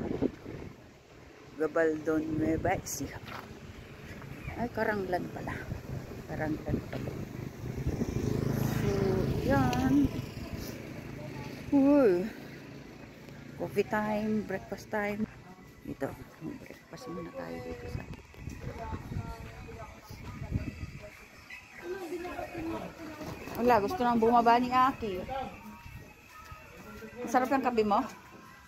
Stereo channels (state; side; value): identical; both; correlation 1.00